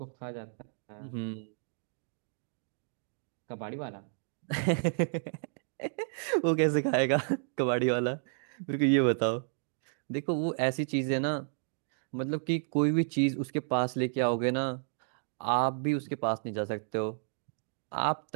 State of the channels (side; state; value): left; silent; digital silence